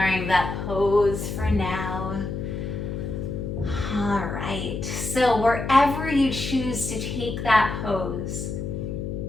that pose for now. All right, so wherever you choose to take that pose,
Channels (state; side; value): noise; left; hum, 5 dB below the sound